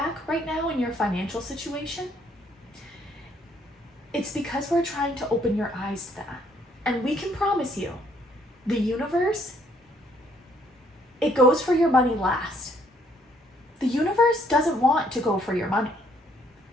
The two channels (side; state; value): both; normal; correlation 0.66